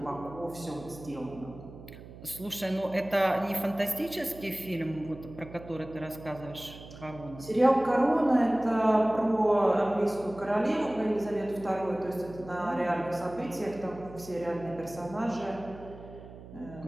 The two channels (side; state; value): right; noise; hum, 16 dB below the sound